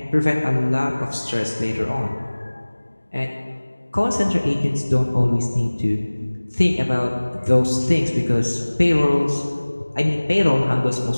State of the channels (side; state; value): both; inverted; correlation -1.00